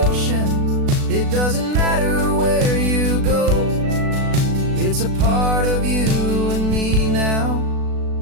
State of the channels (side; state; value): left; late; 36 ms